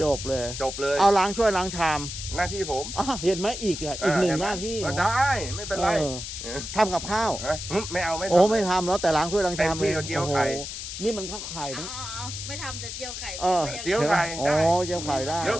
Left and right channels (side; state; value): left; noise; hiss, 8 dB below the sound